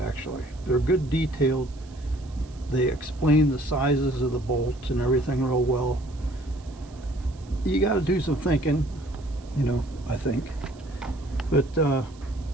They're good detailed. They explain the sizes of the bolts and everything real well. You got to do some thinking, you know, I think. But I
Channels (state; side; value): noise; right; hiss, 27 dB below the sound